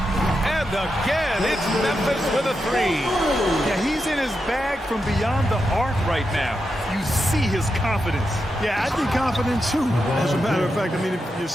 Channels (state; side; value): normal; both; correlation 0.87